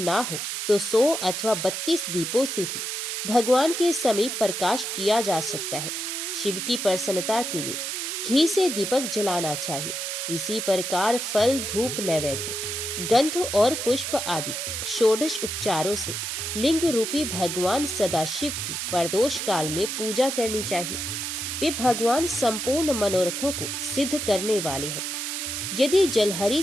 हो तो 100 अथवा 32 दीपों से भी भगवान के समीप प्रकाश किया जा सकता है। शिव की प्रसन्नता के लिए घी से दीपक जलाना चाहिए। इसी प्रकार फल, धूप, नैवेद्य, गंध और पुष्प आदि षोडश उपचारों से लिंग रूपी भगवान सदाशिव की प्रदोष काल में पूजा करनी चाहिए। वे भगवान संपूर्ण मनोरथों को सिद्ध करने वाले हैं। यदि जलहरी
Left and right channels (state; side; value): noise; right; hiss, 3 dB below the sound